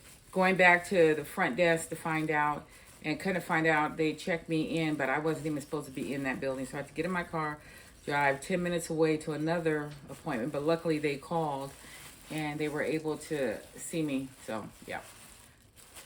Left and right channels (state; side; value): identical; both; correlation 1.00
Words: going back to the front desk to find out, and couldn't find out. They checked me in, but I wasn't even supposed to be in that building. So I had to get in my car, drive 10 minutes away to another appointment. But luckily they called, and they were able to see me. So, yeah.